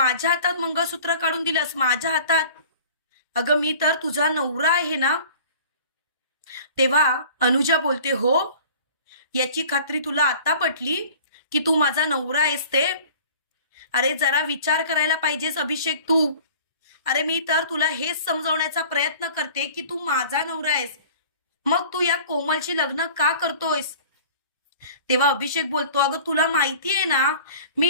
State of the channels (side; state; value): both; inverted; correlation -0.45